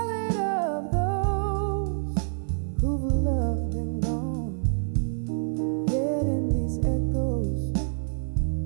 of those who've loved and gone. Yet in these echoes,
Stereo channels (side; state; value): left; silent; digital silence